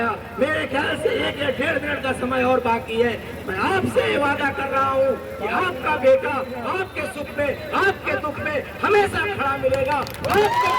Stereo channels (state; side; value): identical; both; correlation 1.00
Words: मेरे ख्याल से 1 या 1.5 मिनट का समय और बाकी है। मैं आपसे ये वादा कर रहा हूँ कि आपका बेटा आपके सुख में, आपके दुख में हमेशा खड़ा मिलेगा।